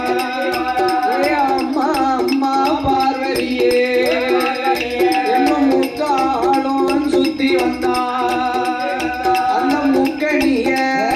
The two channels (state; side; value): identical; both; correlation 1.00